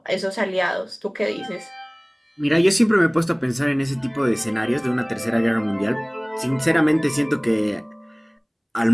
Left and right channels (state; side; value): identical; both; correlation 1.00